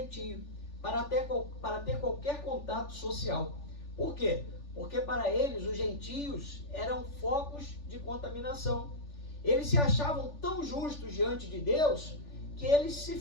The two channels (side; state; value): right; late; 3.4 ms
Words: para ter qualquer contato social. Por quê? Porque para eles os gentios eram focos de contaminação. Eles se achavam tão justos diante de Deus que eles se